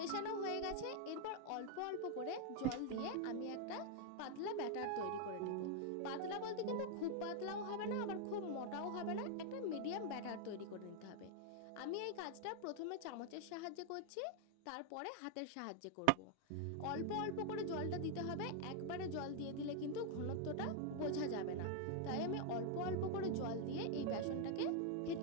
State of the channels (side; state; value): both; different; correlation 0.00